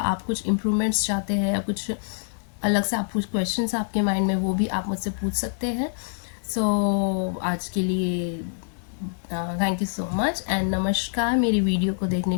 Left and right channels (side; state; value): right; silent; digital silence